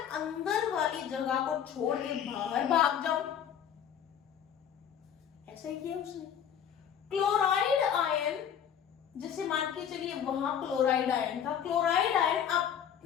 अंदर वाली जगह को छोड़ के बाहर भाग जाऊं। ऐसा ही किया उसने। क्लोराइड आयन, जैसे मान के चलिए वहां क्लोराइड आयन था, क्लोराइड आयन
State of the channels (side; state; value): right; quieter; 8.8 dB